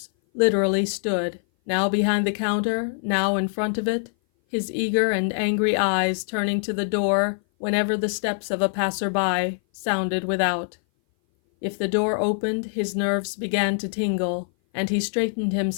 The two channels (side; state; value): right; silent; 58 dB below the other